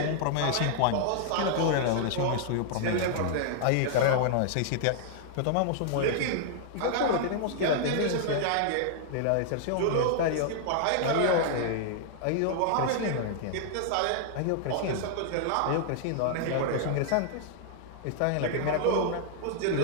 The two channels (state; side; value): different; both; correlation -0.01